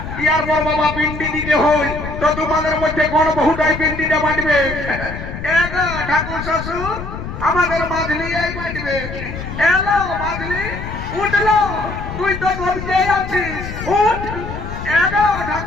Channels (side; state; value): left; noise; rumble, 8 dB below the sound